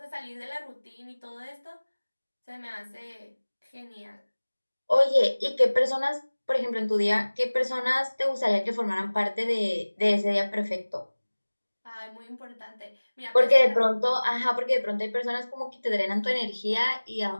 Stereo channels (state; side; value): inverted; both; correlation -1.00